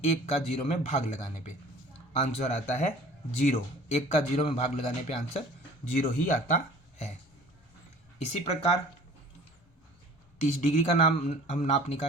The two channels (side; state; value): both; normal; correlation 0.47